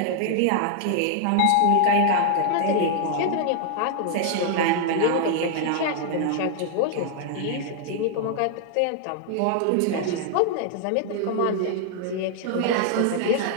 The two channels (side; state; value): both; different; correlation 0.00